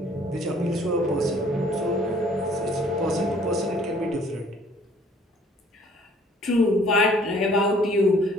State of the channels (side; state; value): both; normal; correlation 0.58